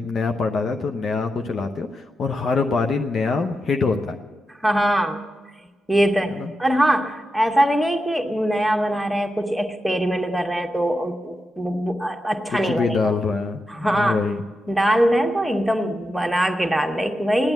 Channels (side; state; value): both; normal; correlation 0.88